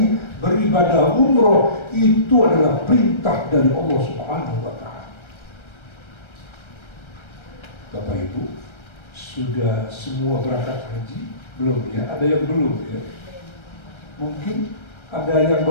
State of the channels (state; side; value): late; right; 1.3 ms